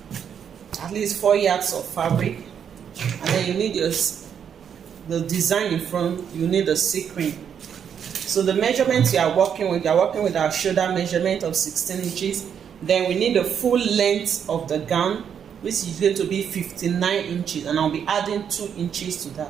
at least 4 yards of fabric, and then you need the design in front. You need a sequin. So the measurements you are working with our shoulder measurement of 16 inches. Then we need the full length of the gown, which is going to be 59 inches, and I'll be adding 2 inches to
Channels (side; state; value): left; quieter; 8.0 dB